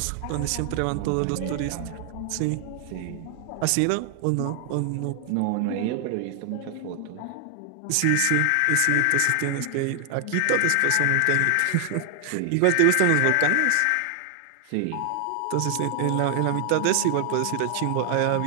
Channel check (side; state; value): both; different; correlation 0.00